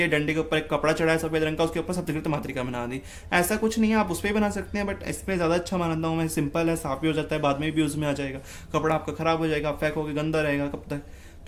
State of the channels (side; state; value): both; identical; correlation 1.00